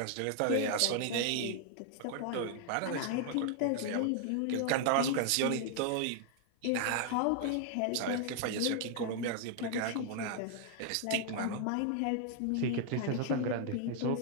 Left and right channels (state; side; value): different; both; correlation 0.00